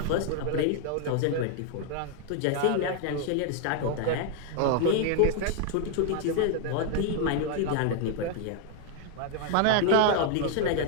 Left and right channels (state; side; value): different; both; correlation 0.00